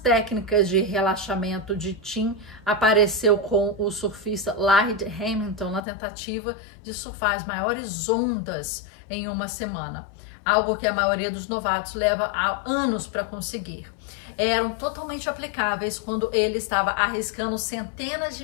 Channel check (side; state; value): right; drops out; at 5.8 s